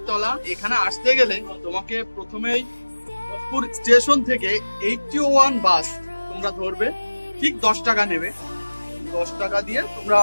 এখানে আসতে গেলে তোমাকে প্রথমেই ভোজপুর স্টেশন থেকে 81 বাস তোমরা ধরবে, ঠিক 10 টাকা নেবে। 10 টাকা দিয়ে তোমরা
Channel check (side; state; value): both; inverted; correlation -1.00